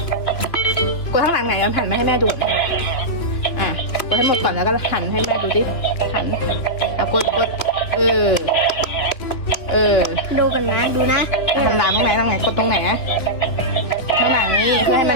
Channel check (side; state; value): right; late; 3.0 ms